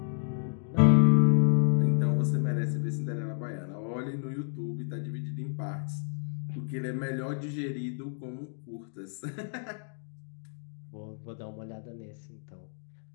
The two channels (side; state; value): right; silent; digital silence